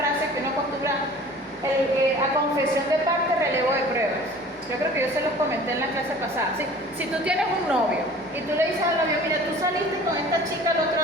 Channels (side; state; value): both; normal; correlation 0.46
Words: que uno acostumbra a confesión de parte, relevo de pruebas. Yo creo que yo se los comenté en la clase pasada. ¿Sí? Si tú tienes un novio y tú le dices al novio, mira, tú saliste con esta chica el